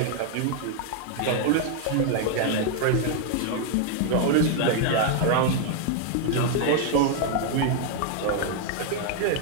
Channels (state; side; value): different; both; correlation 0.00